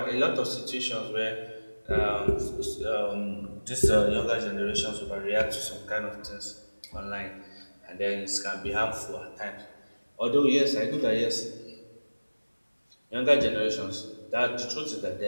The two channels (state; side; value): inverted; both; correlation -1.00